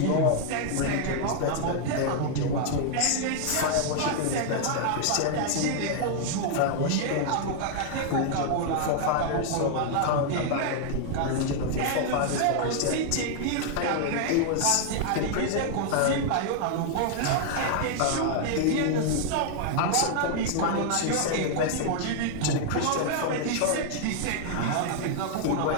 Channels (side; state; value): both; different; correlation 0.00